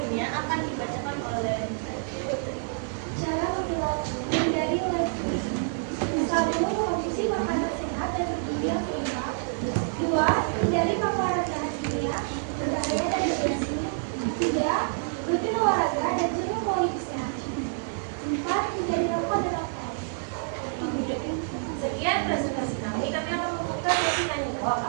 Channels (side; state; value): left; silent; digital silence